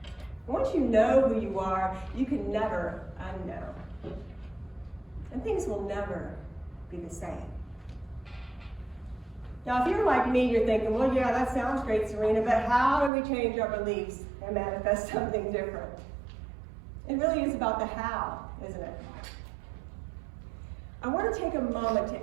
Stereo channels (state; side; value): drops out; left; at 13.1 s